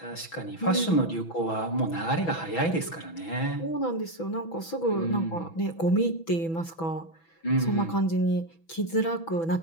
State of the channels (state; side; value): late; right; 6.1 ms